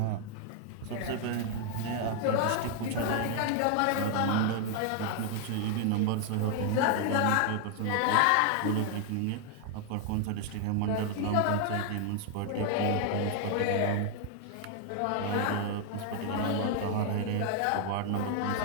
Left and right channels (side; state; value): both; different; correlation 0.00